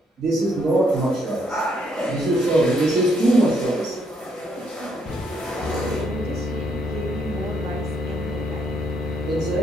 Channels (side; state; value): both; normal; correlation 0.72